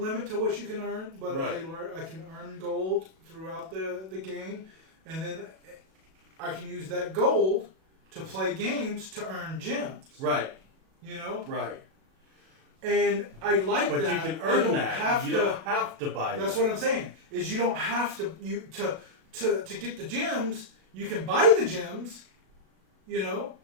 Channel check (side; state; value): left; late; 37 ms